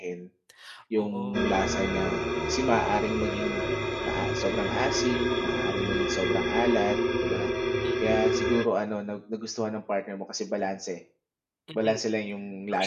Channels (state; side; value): identical; both; correlation 1.00